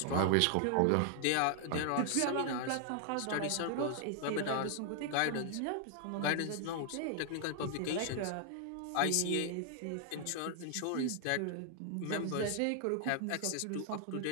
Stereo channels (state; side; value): different; both; correlation 0.00